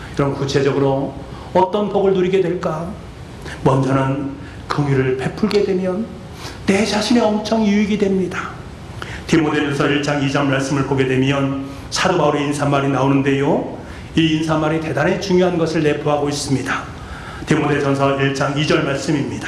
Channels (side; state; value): both; identical; correlation 1.00